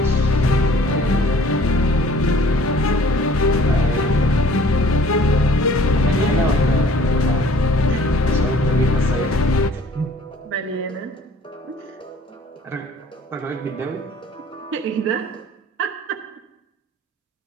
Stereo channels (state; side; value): normal; both; correlation 0.53